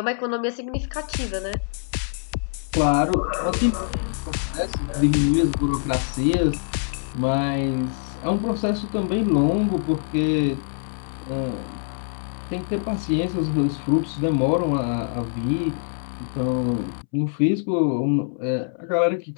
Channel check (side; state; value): right; silent; 63 dB below the other